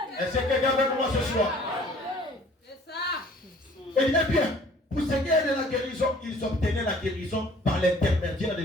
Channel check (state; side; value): normal; both; correlation 0.53